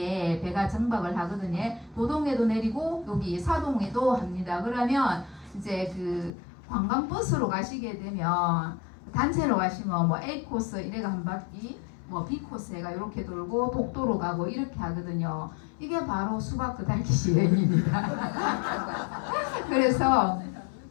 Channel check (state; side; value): drops out; right; at 6.3 s